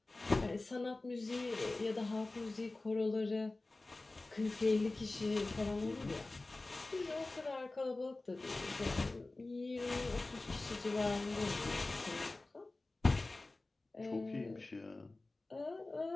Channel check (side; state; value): right; quieter; 3.1 dB